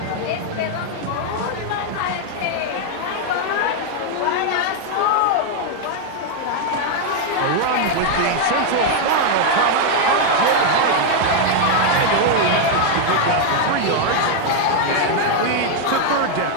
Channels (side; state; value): both; different; correlation 0.00